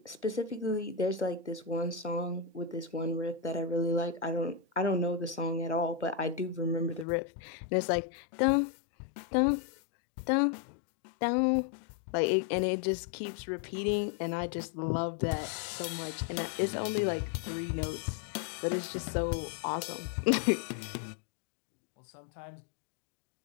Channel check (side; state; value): right; drops out; at 7.1 s